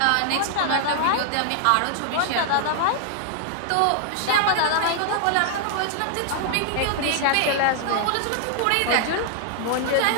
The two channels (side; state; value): both; different; correlation 0.00